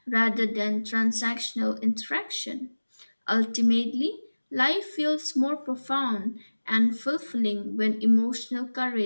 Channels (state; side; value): inverted; both; correlation -1.00